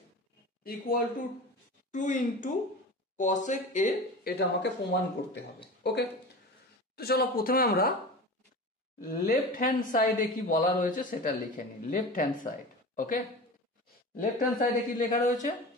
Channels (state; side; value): normal; both; correlation 0.32